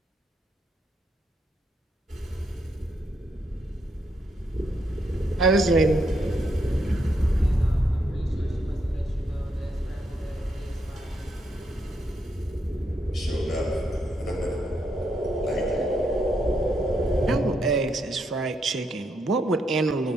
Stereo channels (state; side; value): normal; both; correlation 0.78